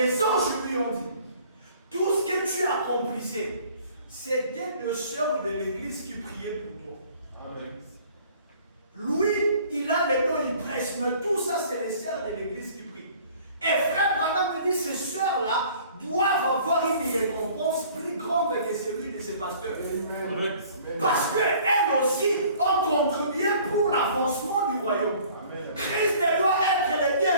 anges lui ont dit, tout ce que tu accomplissais, c'était deux sœurs de l'église qui priaient pour toi. Amen. Lui, il a les dons, il prêche, mais tout ça, c'est les sœurs de l'église qui prient. Et frère Branham me dit, ces sœurs-là doivent avoir une récompense plus grande que celui de ses pasteurs. Amen. Parce qu'elles aussi ont contribué pour l'avancement du royaume. Amen. Christ doit être le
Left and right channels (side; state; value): both; inverted; correlation -0.53